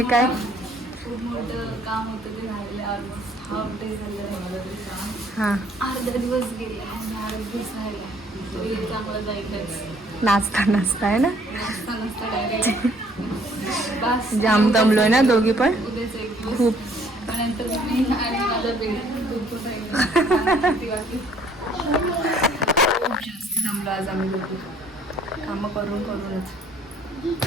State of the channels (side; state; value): both; normal; correlation 0.61